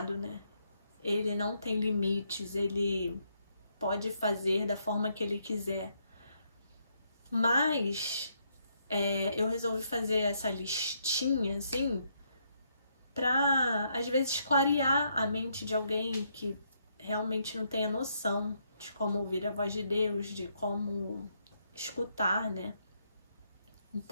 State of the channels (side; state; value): both; inverted; correlation -0.75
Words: né? Ele não tem limites, ele pode fazer da forma que ele quiser. Mas eu resolvi fazer essa listinha, assim, pra, às vezes, clarear a mente de alguém que realmente não tenha noção de como ouvir a voz de Deus, de como escutar, né?